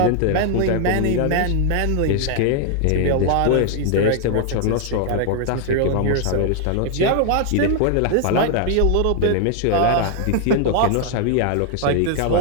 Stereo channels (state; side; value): different; both; correlation 0.00